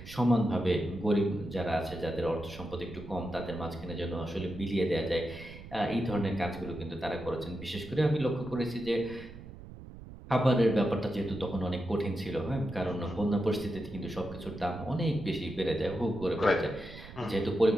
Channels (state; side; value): noise; right; rumble, 15 dB below the sound